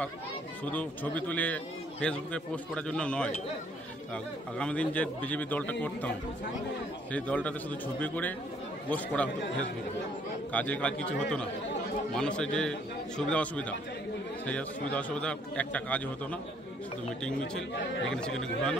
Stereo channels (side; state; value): both; normal; correlation 0.64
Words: শুধু ছবি তুলে ফেসবুকে পোস্ট করার জন্য নয়। আগামী দিন যে বিজেপি দলটা করতাম, সেই দলটাতে শুধু ছবি করে পোস্ট করা হতো ফেসবুকে, কাজে কাজ কিছু হতো না। মানুষের যে সুবিধা অসুবিধা, সেই সুবিধা অসুবিধা একটা কাজ হতো না, শুধু মিটিং মিছিল এখানে সেখানে